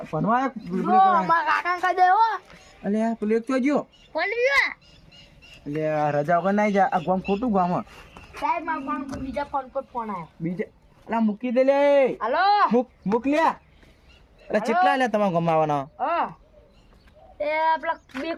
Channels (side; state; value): both; identical; correlation 1.00